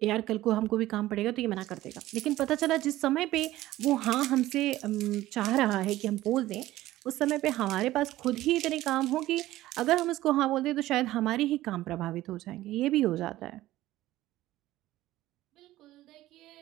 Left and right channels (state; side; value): quieter; left; 15.8 dB